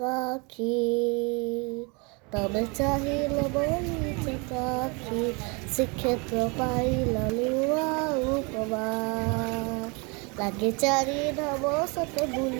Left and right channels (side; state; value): left; quieter; 30.6 dB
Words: ତମେ ଚାହିଁଲ ବୋଲି ଚକାଖି, ଶ୍ରୀକ୍ଷେତ୍ର ପାଇଲ ନୂଆ ଉପମା। ଲାଗେ ଚାରି ଧାମ ସତେ